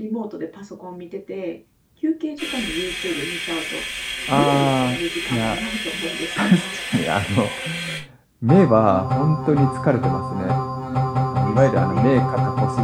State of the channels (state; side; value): identical; both; correlation 1.00